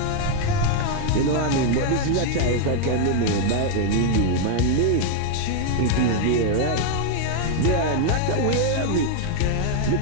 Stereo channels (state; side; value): different; both; correlation 0.00